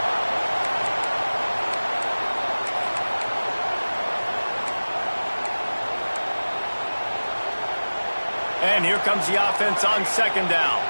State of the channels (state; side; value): inverted; both; correlation -1.00